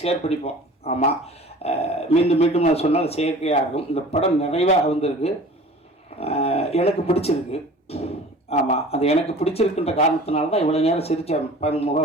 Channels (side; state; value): both; normal; correlation 0.43